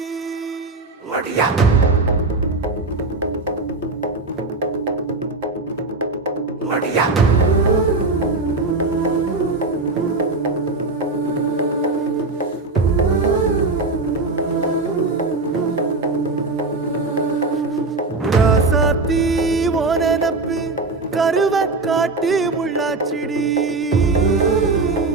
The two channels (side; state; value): left; quieter; 3.5 dB